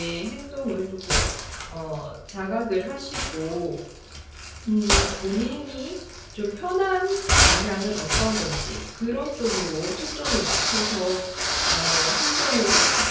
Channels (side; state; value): both; identical; correlation 1.00